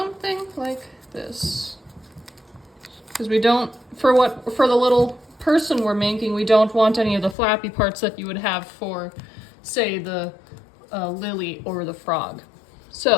like this. Because we don't, for the little person we're making, we don't want any of the flappy parts that you would have for, say, the lily or the frog.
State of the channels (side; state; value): right; drops out; at 7.4 s